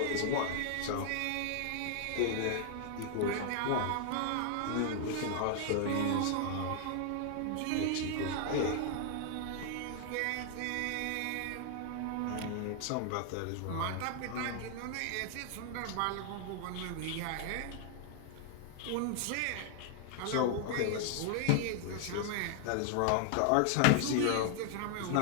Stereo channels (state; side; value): different; both; correlation 0.00